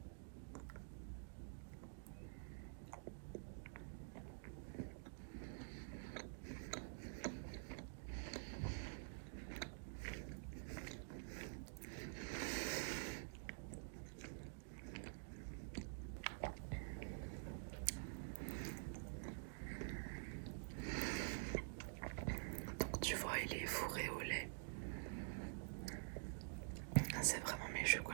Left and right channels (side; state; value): left; silent; digital silence